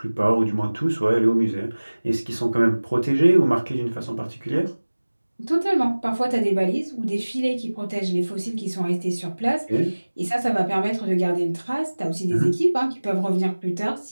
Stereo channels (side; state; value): both; inverted; correlation -1.00